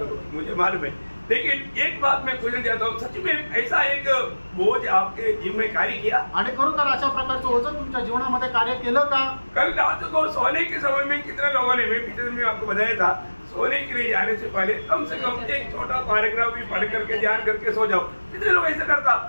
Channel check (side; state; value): both; inverted; correlation -1.00